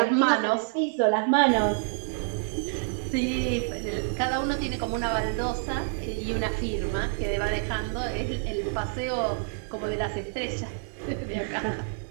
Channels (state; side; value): silent; left; 60 dB below the other